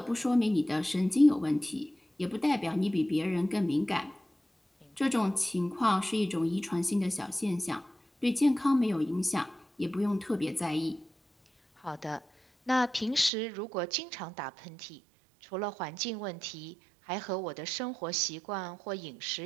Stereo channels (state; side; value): drops out; left; at 13.3 s